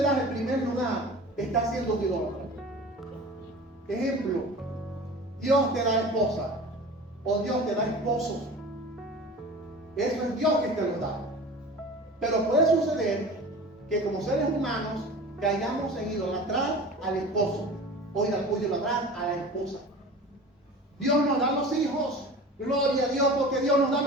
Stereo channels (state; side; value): normal; both; correlation 0.38